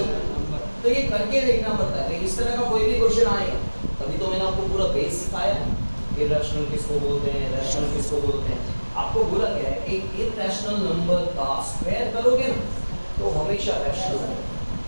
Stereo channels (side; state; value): both; inverted; correlation -1.00